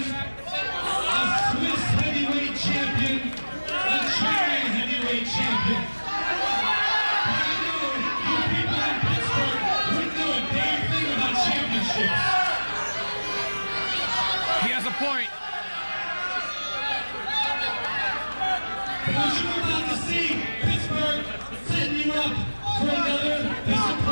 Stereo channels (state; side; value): inverted; both; correlation -1.00